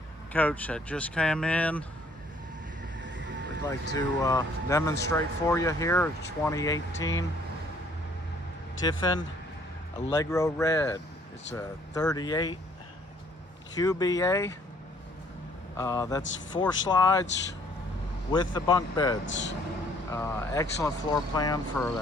coach that just came in. We'd like to demonstrate for you here. It's 2018 Tiffin Allegro Red. It's a 38 QBA. That's 4 slides with the bunk beds. Excellent floor plan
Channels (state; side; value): normal; both; correlation 0.61